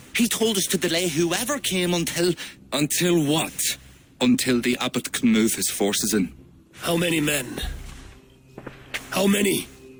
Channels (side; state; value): both; identical; correlation 1.00